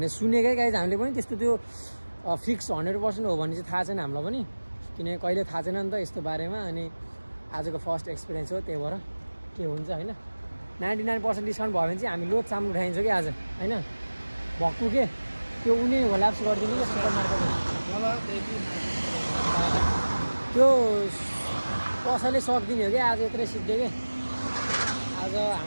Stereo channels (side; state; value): both; inverted; correlation -1.00